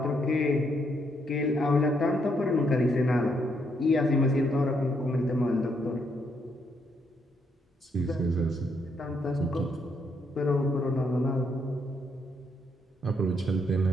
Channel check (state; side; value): normal; both; correlation 0.75